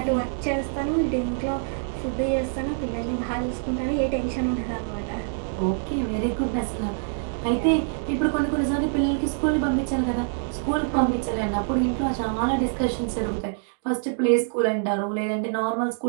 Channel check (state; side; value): silent; left; digital silence